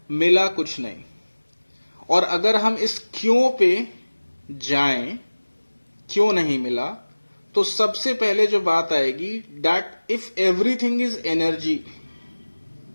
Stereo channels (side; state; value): both; inverted; correlation -1.00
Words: मिला कुछ नहीं। और अगर हम इस क्यों पे जाएं, क्यों नहीं मिला, तो सबसे पहले जो बात आएगी, that if everything is energy